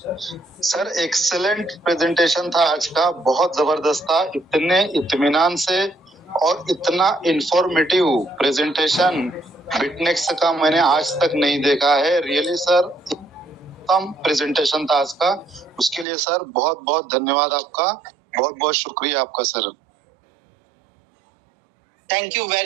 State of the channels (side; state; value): left; drops out; at 16.1 s